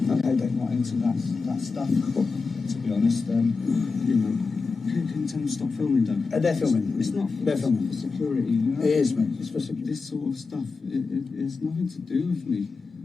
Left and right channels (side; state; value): right; quieter; 4.4 dB